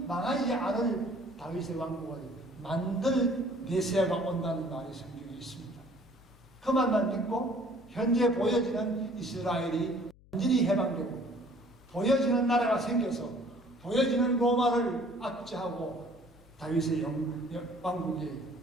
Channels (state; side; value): noise; left; hum, 25 dB below the sound